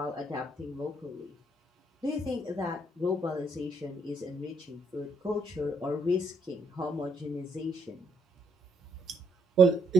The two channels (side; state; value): both; normal; correlation 0.71